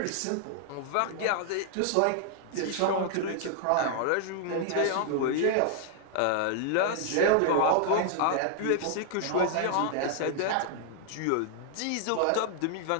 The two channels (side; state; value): both; different; correlation 0.00